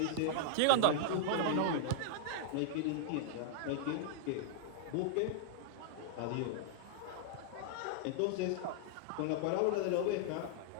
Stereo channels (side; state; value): both; different; correlation -0.01